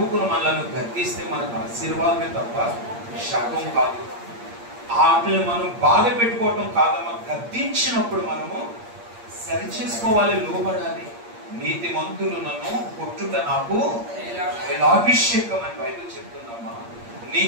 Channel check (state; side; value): late; left; 8.6 ms